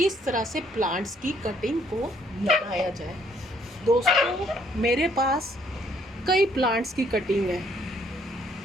तरह से प्लांट्स की कटिंग को लगाया जाए। दोस्तों, मेरे पास कई प्लांट्स की कटिंग है।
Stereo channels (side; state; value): both; normal; correlation 0.66